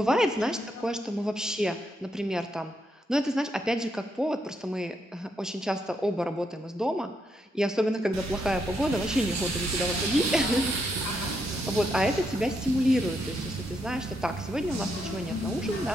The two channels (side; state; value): both; normal; correlation 0.79